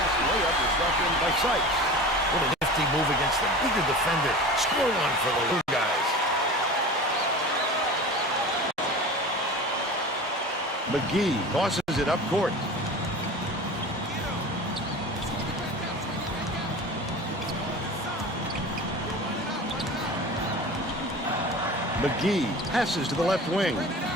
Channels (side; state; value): both; normal; correlation 0.35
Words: layup is left in by Sykes. What an Nasty move against the bigger defender. Score one for the little guys. McGee tosses it up court. McGee passes to the left wing.